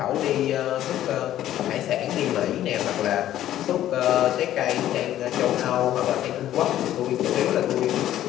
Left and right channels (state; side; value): quieter; right; 12.6 dB